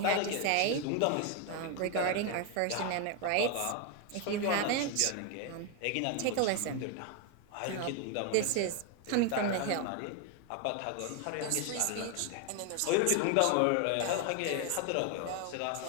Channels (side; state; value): both; different; correlation 0.01